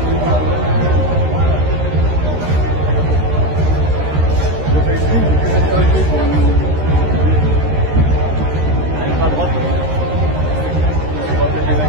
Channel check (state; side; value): late; left; 13 ms